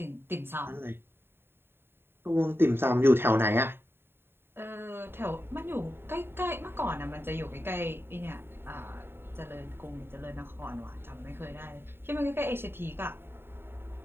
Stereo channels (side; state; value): left; late; 0.11 ms